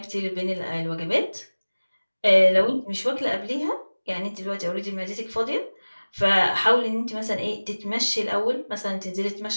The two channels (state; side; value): inverted; both; correlation -1.00